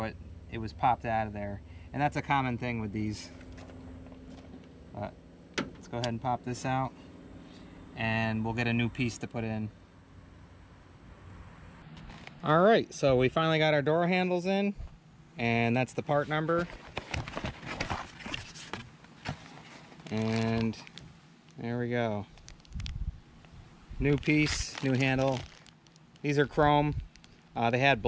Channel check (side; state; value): both; identical; correlation 1.00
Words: it was popped out of there. And that's a common thing with these. But let's go ahead and pop this out, and we'll get a new piece to put in. Alright, so we finally got our door handles in, and that's the part number. And there we go. New piece, new handle. These are chrome. They had